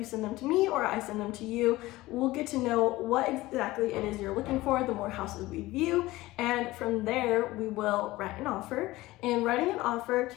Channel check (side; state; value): right; quieter; 18.4 dB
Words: send them to me or I send them to you, we'll get to know what exactly it is you're looking for, the more houses we view. And from there, we will write an offer. And writing an offer